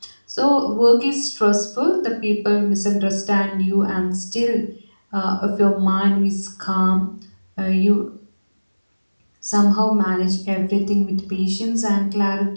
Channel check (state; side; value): inverted; both; correlation -1.00